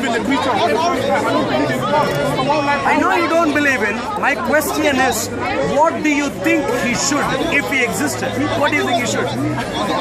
in the creature? I don't believe in God. I know you don't believe in. My question is, what do you think he should if he existed? What do you think he should?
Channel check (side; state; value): both; identical; correlation 1.00